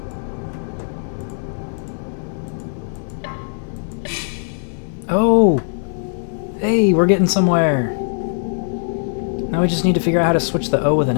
Oh! Hey, we're getting somewhere. Now we just need to figure out how to switch the O with an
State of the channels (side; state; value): right; silent; digital silence